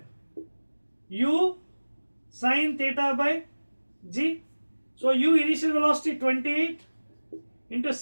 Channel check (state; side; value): inverted; both; correlation -1.00